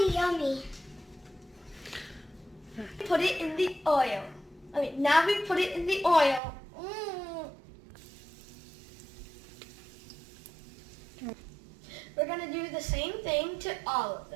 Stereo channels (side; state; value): left; drops out; at 6.4 s